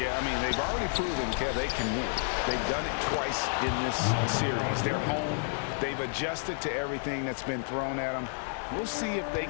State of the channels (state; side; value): silent; right; 58 dB below the other